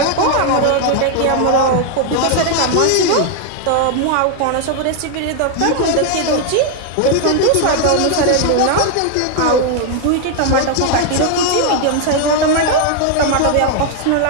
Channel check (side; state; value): both; different; correlation 0.00